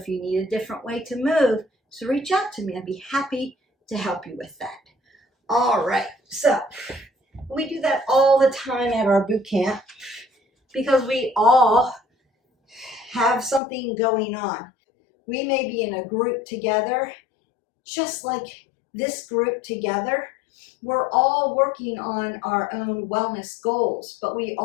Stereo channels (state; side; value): drops out; right; at 13.6 s